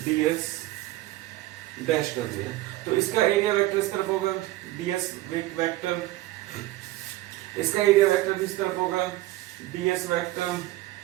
ds डैश कर दिया। तो इसका एरिया वेक्टर इस तरफ होगा, ds वेक्टर, इसका एरिया वेक्टर भी इस तरफ होगा, ds वेक्टर,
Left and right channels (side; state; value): left; quieter; 17.0 dB